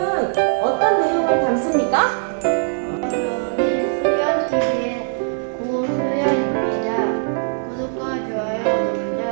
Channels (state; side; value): silent; left; digital silence